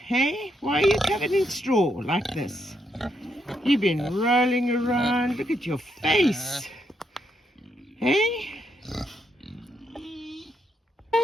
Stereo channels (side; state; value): both; normal; correlation 0.78